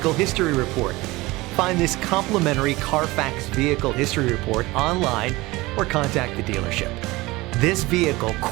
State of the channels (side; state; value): left; quieter; 20.8 dB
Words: History Report. Find this complimentary Carfax Vehicle History Report online or contact the dealership. This vehicle